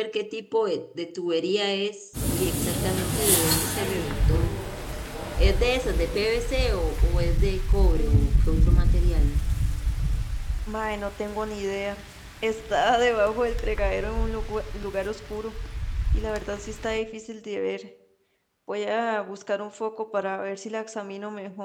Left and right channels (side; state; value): both; identical; correlation 1.00